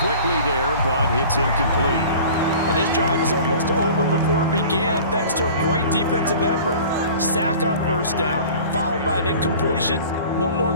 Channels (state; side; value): inverted; both; correlation -0.43